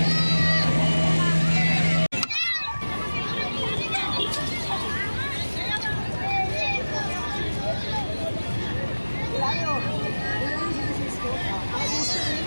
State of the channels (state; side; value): inverted; both; correlation -1.00